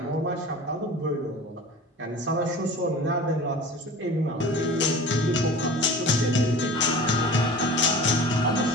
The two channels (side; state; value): both; normal; correlation 0.39